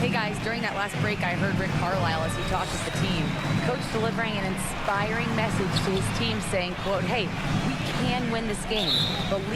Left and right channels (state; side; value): identical; both; correlation 1.00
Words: guys, during that last break, I heard Rick Carlisle as he talked with the team. Coach delivering an inspiring message to his team saying, quote, hey, we can win this game.